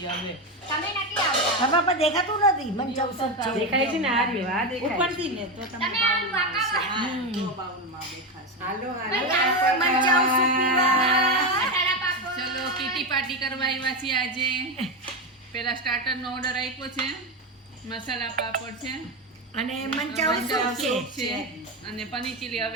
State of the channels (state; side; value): normal; both; correlation 0.13